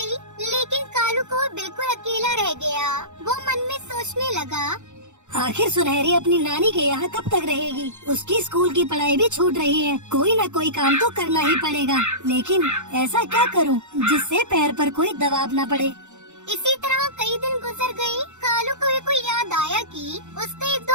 लेकिन कालू को बिल्कुल अकेला रह गया। वो मन में सोचने लगा, आखिर सुनहरी अपनी नानी के यहाँ कब तक रहेगी? उसकी स्कूल की पढ़ाई भी छूट रही है। कोई न कोई काम तो करना ही पड़ेगा, लेकिन ऐसा क्या करूँ जिससे पैर पर कोई दबाव न पड़े। इसी तरह कई दिन गुजर गए। कालू को याद आया कि उसका एक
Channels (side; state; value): left; late; 0.84 ms